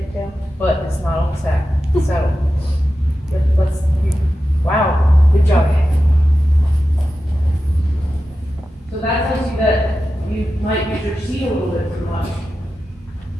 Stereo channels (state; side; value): normal; both; correlation 0.92